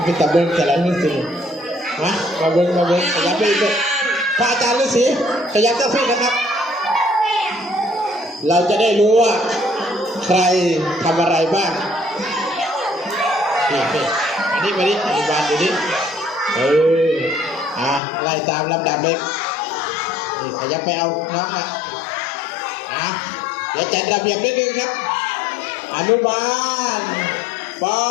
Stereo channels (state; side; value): drops out; right; at 18.0 s